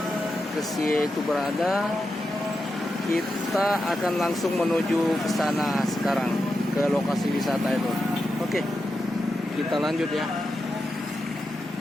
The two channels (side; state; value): both; normal; correlation 0.88